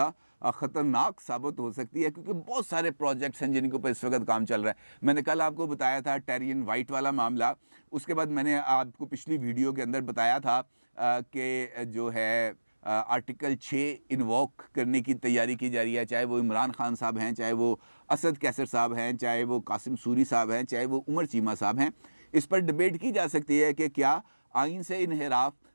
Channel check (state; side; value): inverted; both; correlation -1.00